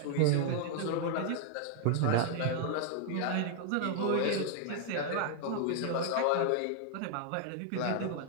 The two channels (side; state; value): both; different; correlation 0.00